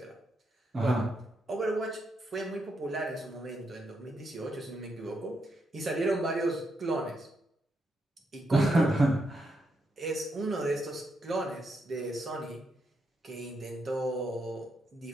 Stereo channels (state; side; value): normal; both; correlation 0.81